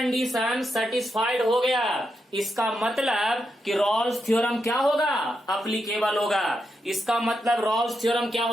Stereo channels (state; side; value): normal; both; correlation 0.84